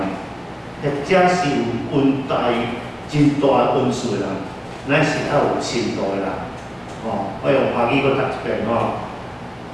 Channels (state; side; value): identical; both; correlation 1.00